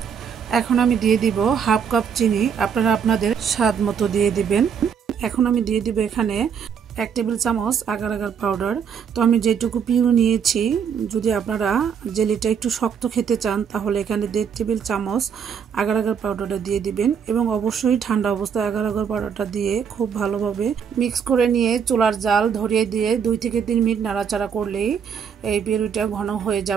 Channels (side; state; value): left; quieter; 7.2 dB